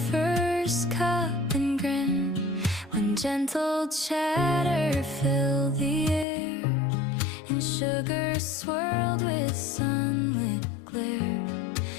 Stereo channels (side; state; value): right; drops out; at 6.2 s